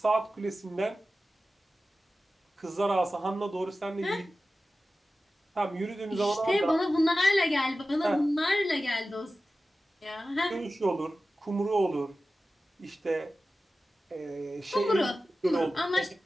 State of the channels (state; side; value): normal; both; correlation 0.94